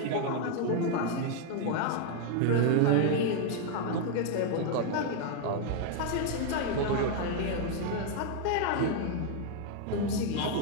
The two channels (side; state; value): both; different; correlation 0.00